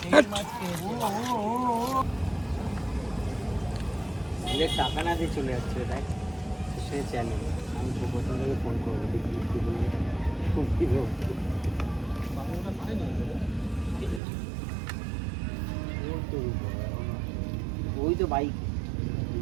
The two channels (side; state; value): left; drops out; at 14.2 s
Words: টাকা না দিয়ে চলে যাচ্ছে তাই সে চ্যানেল আমি প্রথম থেকে ফোন করবো ওই তো বাইক